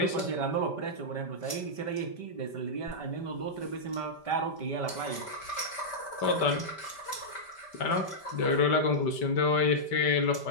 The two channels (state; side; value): late; right; 5.1 ms